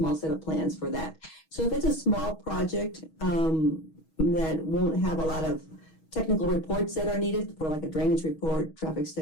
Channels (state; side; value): late; right; 6.3 ms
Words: set of plans for that. So if it's a small project that won't have a lot of technical reports that are needed for like a drainage report, traffic